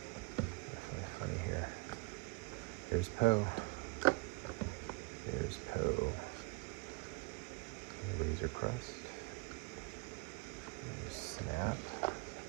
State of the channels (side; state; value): left; quieter; 28.9 dB